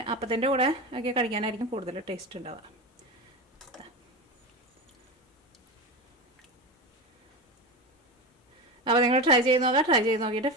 അപ്പത്തിൻ്റെ കൂടെ ഒക്കെ കഴിക്കാനായിരിക്കും കൂടുതൽ ടേസ്റ്റ് ഉണ്ടാവുക. അപ്പോൾ നിങ്ങൾ ട്രൈ ചെയ്ത് നോക്കുക. ട്രൈ ചെയ്ത് നോക്കിയിട്ട്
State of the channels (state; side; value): normal; both; correlation 0.21